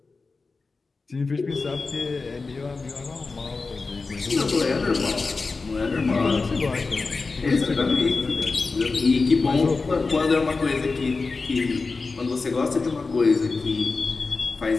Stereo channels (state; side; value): quieter; right; 4.0 dB